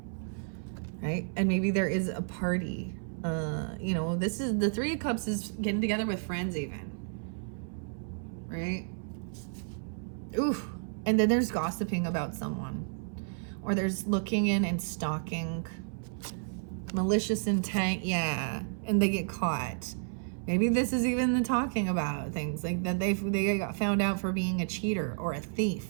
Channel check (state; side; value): silent; left; 57 dB below the other